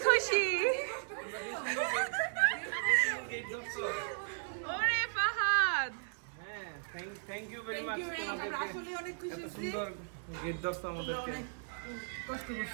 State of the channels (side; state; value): left; silent; digital silence